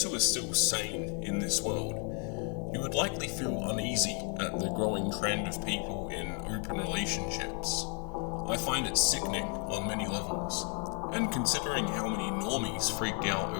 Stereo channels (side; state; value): right; quieter; 38.1 dB